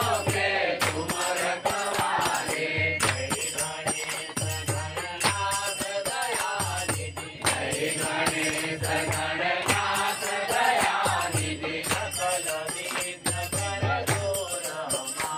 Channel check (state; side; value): identical; both; correlation 1.00